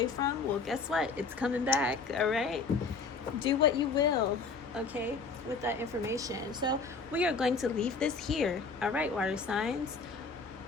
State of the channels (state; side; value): quieter; right; 4.6 dB